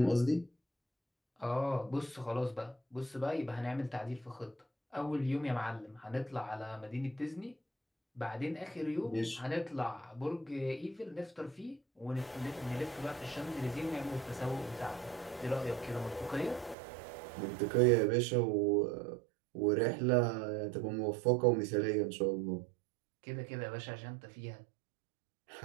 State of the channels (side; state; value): left; drops out; at 16.8 s